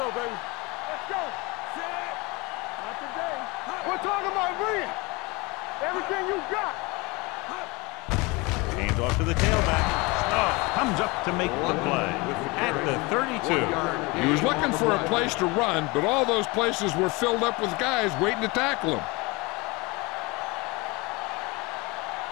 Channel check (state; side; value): quieter; right; 25.5 dB